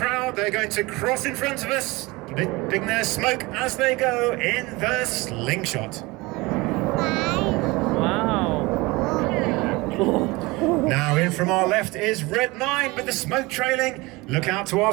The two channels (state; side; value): quieter; left; 23.0 dB